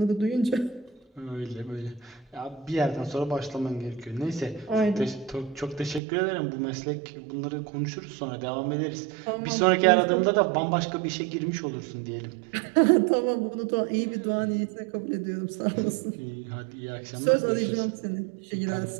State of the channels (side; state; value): left; drops out; at 6.0 s